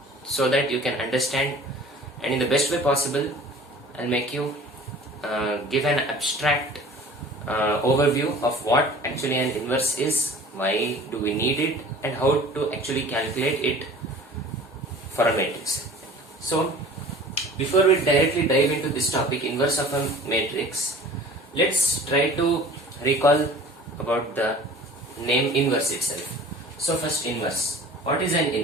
so that you can understand, and in the best way possible I'll make you give an abstract overview of what actually an inverse is, why do we need it, and how to actually calculate it for a matrix. So before we directly dive into this topic, inverse of a matrix, let's try to recall about the name inverse itself. So first, inverse. What is an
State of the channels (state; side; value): normal; both; correlation 0.44